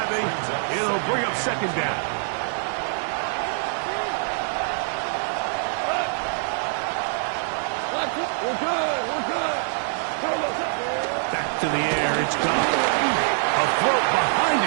It'll bring up second down. We're good. Back to the air. It's gone. A throat behind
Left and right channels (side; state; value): left; silent; 56 dB below the other